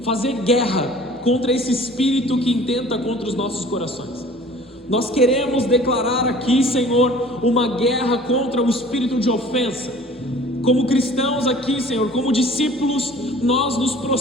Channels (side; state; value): both; normal; correlation 0.48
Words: fazer guerra contra esse espírito que intenta contra os nossos corações. Nós queremos declarar aqui, Senhor, uma guerra contra o espírito de ofensa. Como cristãos aqui, Senhor, como discípulos, nós nos